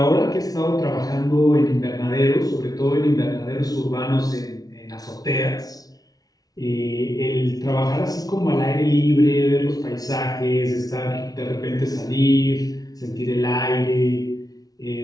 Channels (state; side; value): late; right; 0.18 ms